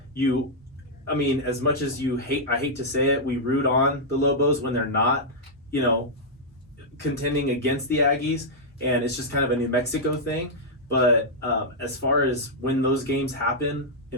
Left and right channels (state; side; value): normal; both; correlation -0.06